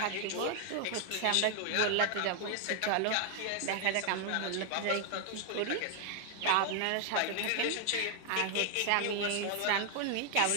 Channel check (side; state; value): both; different; correlation 0.00